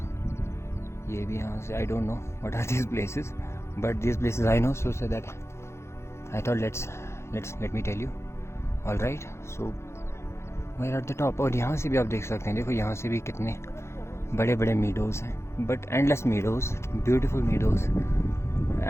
ये भी यहाँ से, I don't know what are these places, but these places I know, so that I thought let me tell you. All right, so we are at the top. और यहाँ से भी आप देख सकते हैं, देखो यहाँ से भी कितने बड़े बड़े मीडोज़ हैं, but endless meadows, beautiful meadows.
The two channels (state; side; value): late; right; 0.13 ms